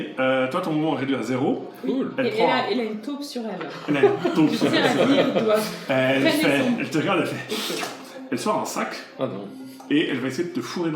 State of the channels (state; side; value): identical; both; correlation 1.00